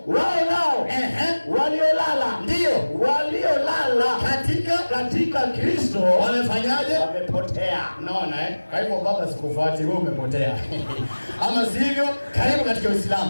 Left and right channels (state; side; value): inverted; both; correlation -1.00